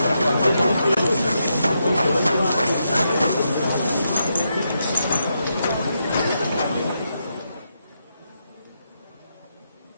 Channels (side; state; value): both; inverted; correlation -0.83